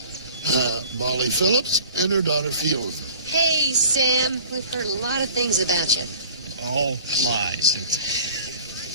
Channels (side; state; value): both; inverted; correlation -0.45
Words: Molly Phillips and her daughter Fiona. Hey, Sam. We've heard a lot of things about you. All lies.